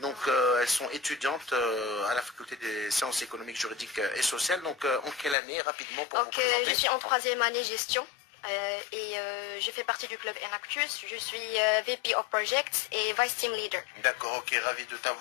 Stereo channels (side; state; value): right; drops out; at 5.4 s